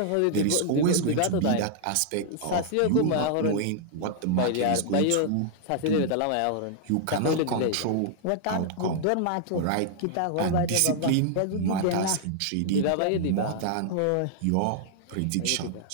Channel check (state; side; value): different; both; correlation -0.01